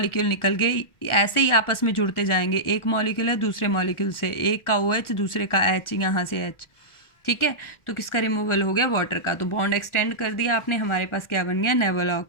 निकल गए, ऐसे ही आपस में जुड़ते जाएंगे। एक मॉलिक्यूल है दूसरे मॉलिक्यूल से, एक का OH दूसरे का H, यहाँ से H, ठीक है। तो किसका रिमूवल हो गया, वाटर का। तो बॉन्ड एक्सटेंड कर दिया आपने, हमारे पास क्या बन गया,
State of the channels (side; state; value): right; late; 1.4 ms